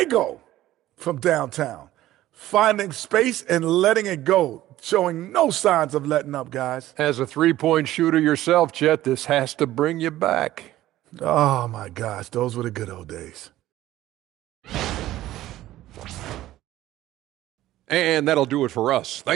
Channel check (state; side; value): quieter; left; 14.8 dB